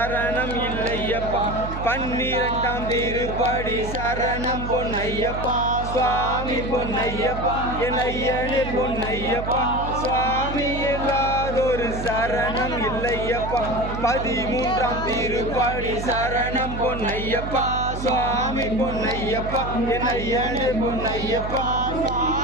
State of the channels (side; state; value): right; noise; hum, 7 dB below the sound